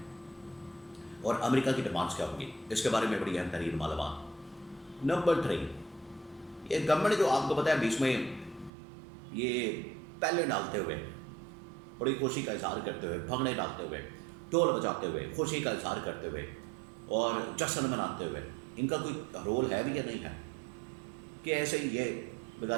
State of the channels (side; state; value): left; drops out; at 8.7 s